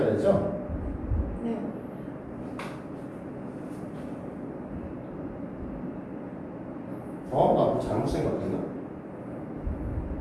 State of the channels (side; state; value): both; identical; correlation 1.00